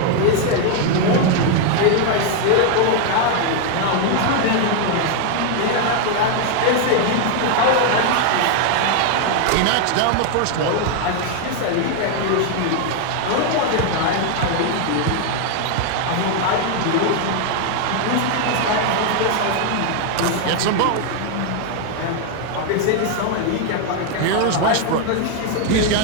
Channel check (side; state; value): both; different; correlation 0.00